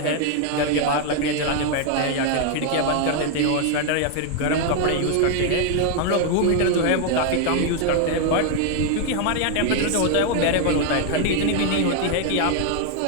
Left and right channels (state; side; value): different; both; correlation 0.00